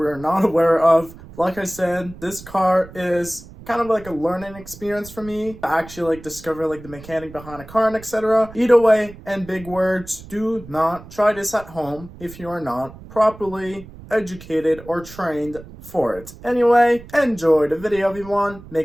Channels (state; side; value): noise; right; rumble, 18 dB below the sound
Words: are not aware of. Like I said, this car is kind of like a learning experience for me to actually like discover like the mechanic behind a car and etc. Either way, and big words, do not try this at home if you are not properly educated or trained for it. Anyway, enjoy the video everyone.